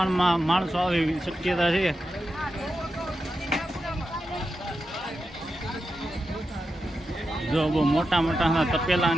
માણસો આવે એવી શક્યતા છે. જો બહુ મોટા મોટા તપેલા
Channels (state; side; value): normal; both; correlation 0.89